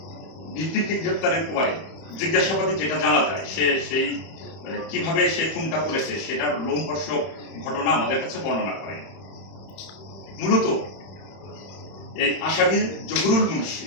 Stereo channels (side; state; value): right; late; 31 ms